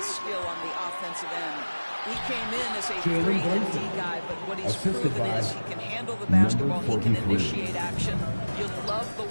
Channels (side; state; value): both; inverted; correlation -1.00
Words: skill on the offensive end. He came in as a 3 and D guy, but what he's proven is he can handle the basketball, he can initiate action. You love the